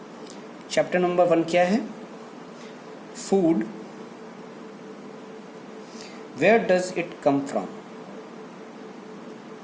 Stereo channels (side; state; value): both; identical; correlation 1.00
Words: चैप्टर नंबर 1 क्या है? Food. Where does it come from?